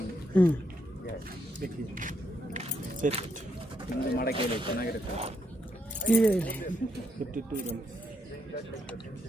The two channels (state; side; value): normal; both; correlation 0.76